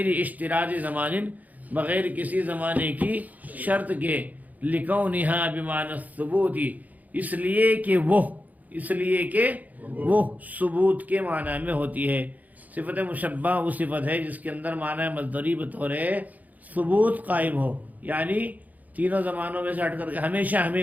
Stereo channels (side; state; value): left; late; 0.079 ms